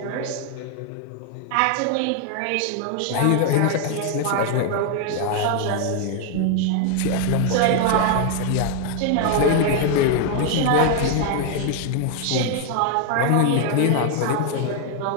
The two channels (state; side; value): different; both; correlation 0.00